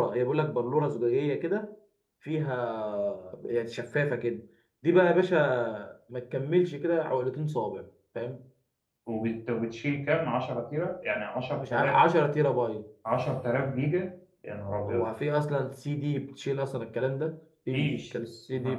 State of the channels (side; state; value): both; identical; correlation 1.00